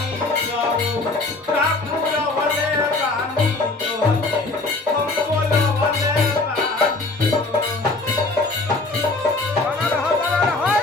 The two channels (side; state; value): right; quieter; 3.3 dB